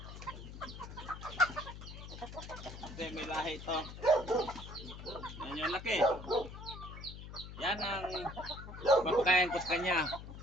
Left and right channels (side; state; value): left; noise; hum, 11 dB below the sound